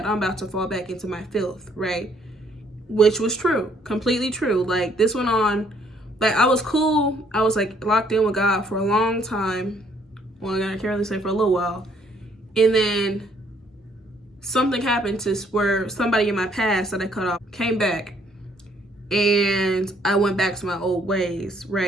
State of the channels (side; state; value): both; normal; correlation 0.66